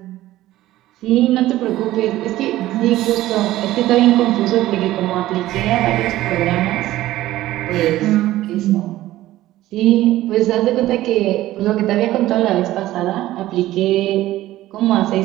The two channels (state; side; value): quieter; left; 15.4 dB